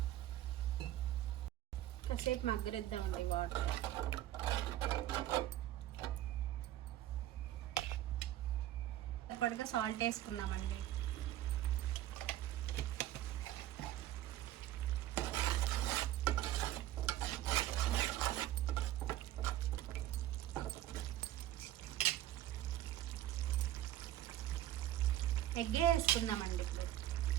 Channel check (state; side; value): quieter; left; 13.3 dB